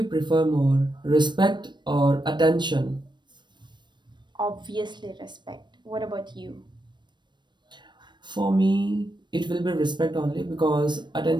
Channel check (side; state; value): left; late; 0.22 ms